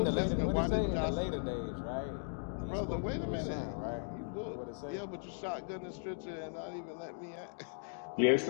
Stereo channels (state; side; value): silent; right; digital silence